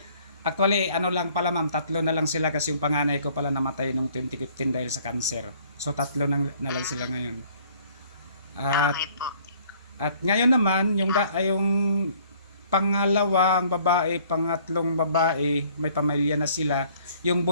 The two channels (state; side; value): inverted; both; correlation -0.58